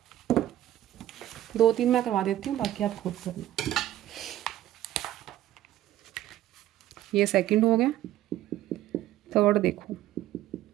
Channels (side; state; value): left; quieter; 13.3 dB